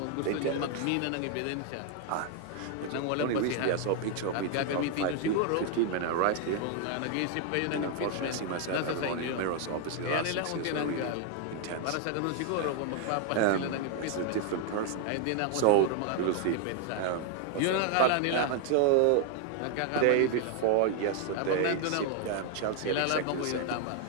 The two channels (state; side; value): different; both; correlation 0.00